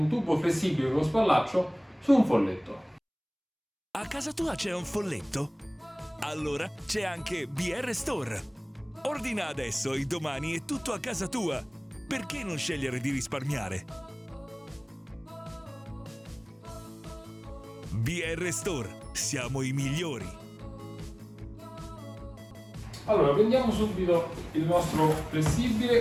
tubo flessibile con spallaccio su un folletto. A casa tua c'è un folletto? Allora c'è anche BR Store. Ordina adesso e domani è tutto a casa tua. Perché non scegliere di risparmiare? BR Store, siamo i migliori. Allora, prendiamo subito il nostro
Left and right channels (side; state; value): both; identical; correlation 1.00